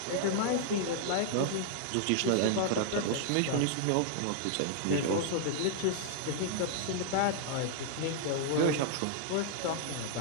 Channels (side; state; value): both; different; correlation -0.01